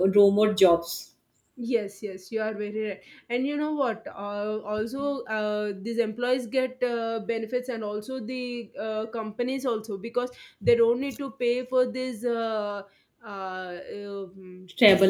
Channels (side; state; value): both; identical; correlation 1.00